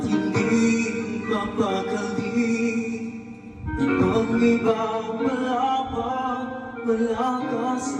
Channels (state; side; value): identical; both; correlation 1.00